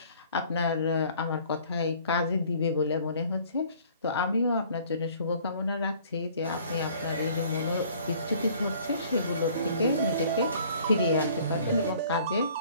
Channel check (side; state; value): both; inverted; correlation -0.55